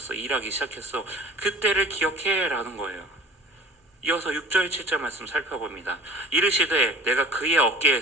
일하기 시작했어. 그때를 기억해 라는 거예요. 이어서 6절 7절 말씀 살펴봅니다. 이르시되 내가 그의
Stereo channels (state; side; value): normal; both; correlation 0.44